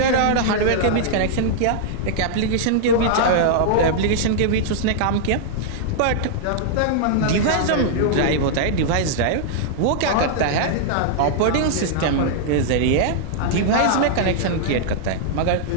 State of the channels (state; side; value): different; both; correlation -0.01